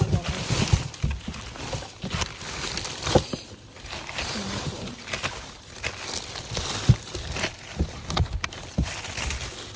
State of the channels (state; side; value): identical; both; correlation 1.00